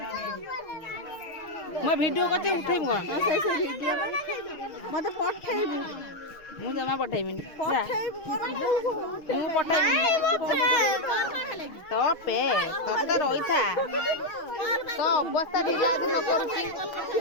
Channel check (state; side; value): late; right; 6.3 ms